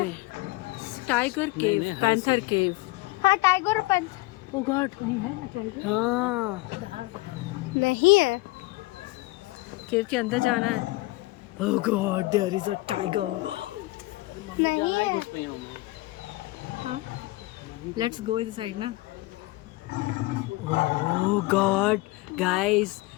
टाइगर केव, पैंथर केव। हाँ टाइगर और पंच ओ गॉड, कहीं है ना टाइगर? हाँ नहीं है। केव के अंदर जाना है। Oh god, there is a tiger. नहीं है। हाँ, लेट्स गो इनसाइड ना। Oh god guys,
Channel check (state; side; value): quieter; right; 21.2 dB